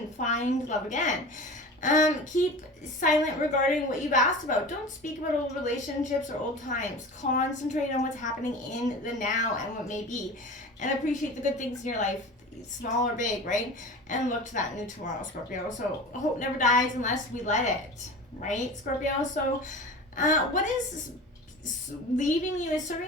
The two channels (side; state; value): both; normal; correlation 0.35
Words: find love again. Keep silent regarding what you've asked about. Don't speak about old relationships or old times. Concentrate on what's happening in the now and what may be. And appreciate the good things in your life, small or big, right? And look to that new tomorrow, Scorpio. So hope never dies unless we let it, right, Scorpio? So what is leaving you is serving